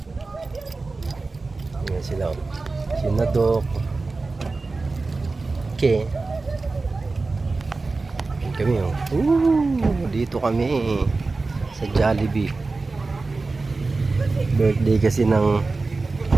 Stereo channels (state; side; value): quieter; left; 3.7 dB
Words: Ayan sila. Sinadok. Okay. Ayan kami oh. Dito kami sa Jollibee. Birthday kasi ng